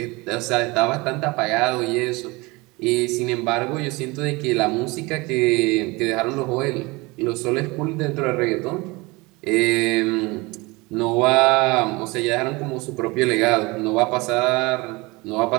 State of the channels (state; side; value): quieter; left; 24.2 dB